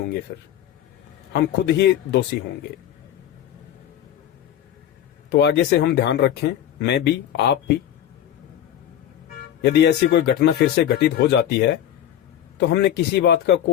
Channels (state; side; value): quieter; right; 10.9 dB